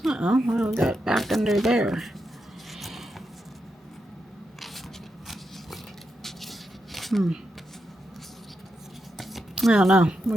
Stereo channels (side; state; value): both; normal; correlation 0.86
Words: Uh-oh, what do we got back under there? I don't know.